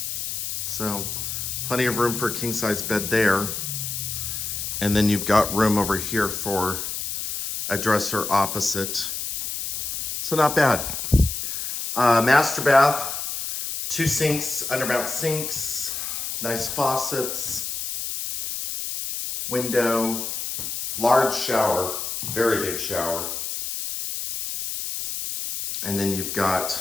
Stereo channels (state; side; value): noise; left; hiss, 4 dB below the sound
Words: So plenty of room for a king-size bed there. And then you've got room over here for a dresser opposite. So not bad. Master bath, 2 sinks, undermount sinks, nice faucets, window, large shower, very big shower. And then you've